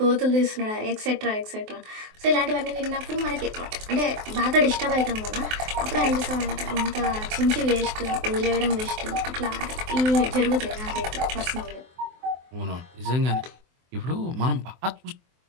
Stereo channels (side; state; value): left; late; 23 ms